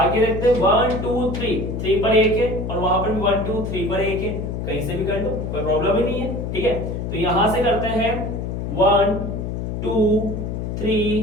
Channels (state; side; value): noise; left; hum, 4 dB below the sound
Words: देखते हैं 1 2 3, 3 पर 1 है और वहां पर भी 1 2 3 पर 1 है। कहीं से भी कर लो, कोई प्रॉब्लम ही नहीं है, ठीक है। तो यहां से करते हैं 1 2